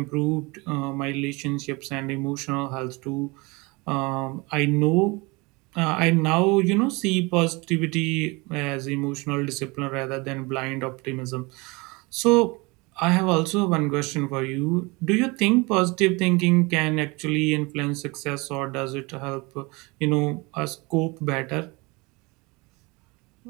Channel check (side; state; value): left; quieter; 25.9 dB